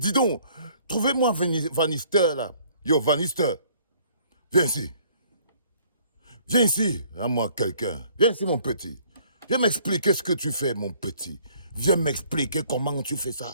donc, trouvez-moi Vanister là. Yo, Vanister, viens ici. Viens ici, à moi quelqu'un. Viens ici mon petit. Viens m'expliquer ce que tu fais mon petit. Viens m'expliquer comment tu fais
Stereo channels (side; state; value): both; inverted; correlation -0.59